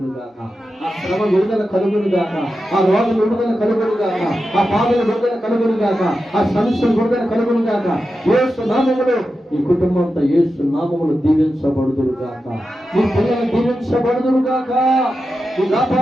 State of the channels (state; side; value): normal; both; correlation 0.90